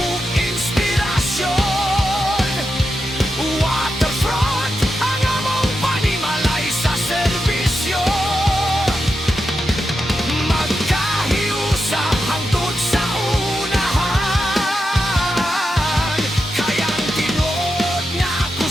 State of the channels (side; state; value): both; normal; correlation 0.88